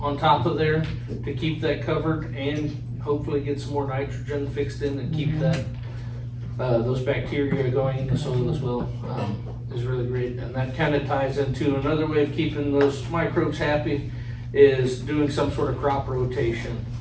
on top of there to keep that covered and hopefully get some more nitrogen fixed in and keep that those bacteria going in the soil as well, is really great. And that kind of ties into another way of keeping those microbes happy is doing some sort of crop rotation,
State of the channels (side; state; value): both; identical; correlation 1.00